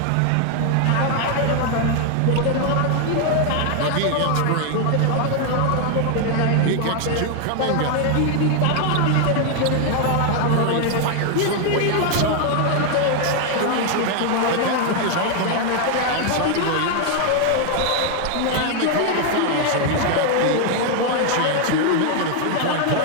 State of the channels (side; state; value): both; different; correlation 0.00